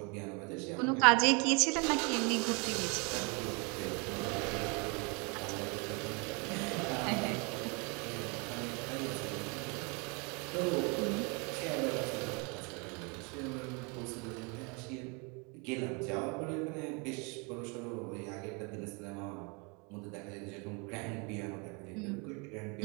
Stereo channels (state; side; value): quieter; left; 31.9 dB